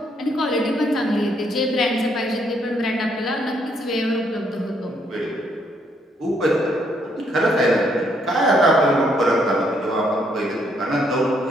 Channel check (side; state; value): both; normal; correlation 0.71